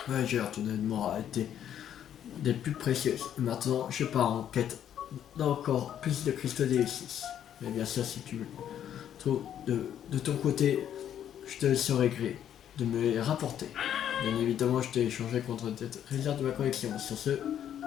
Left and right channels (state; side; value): quieter; right; 10.0 dB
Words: Voyageur, ton aide m'aura été des plus précieuses. Et maintenant, je pars en quête d'encore plus de cristaux D6. Mais bien sûr, si tu trouves de ton côté, je te serai gré de me les rapporter. Bien évidemment, je t'ai échangé contre des réserves de ma collection. Sur ce,